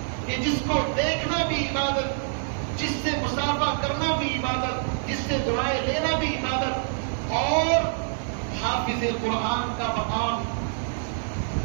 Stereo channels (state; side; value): silent; left; digital silence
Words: کہ جس کو دیکھنا بھی عبادت، جس سے مصافحہ کرنا بھی عبادت، جس سے دعائیں لینا بھی عبادت، اور حافظ قرآن کا مقام